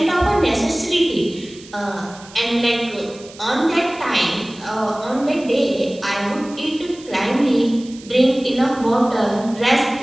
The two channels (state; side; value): noise; right; hiss, 20 dB below the sound